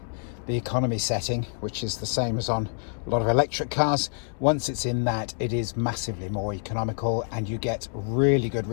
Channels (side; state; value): right; silent; 60 dB below the other